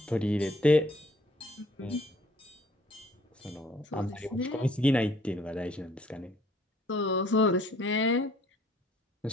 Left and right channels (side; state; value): both; normal; correlation 0.60